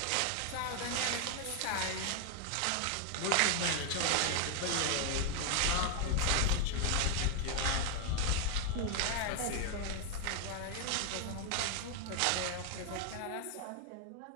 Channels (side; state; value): both; different; correlation 0.00